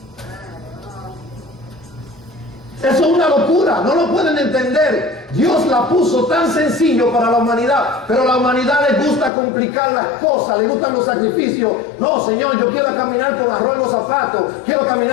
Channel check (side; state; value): right; drops out; at 9.3 s